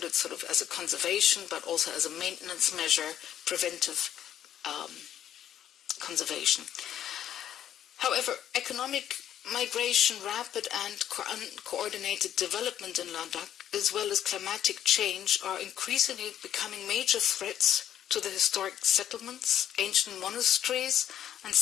sort of as a conservation, but also as a maintenance measure, preventive conservation. However, economic migration, rapid and uncoordinated development in Ladakh, as well as climatic change, are increasingly becoming major threats to the historic settlements, ancient monasteries, and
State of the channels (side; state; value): right; quieter; 10.7 dB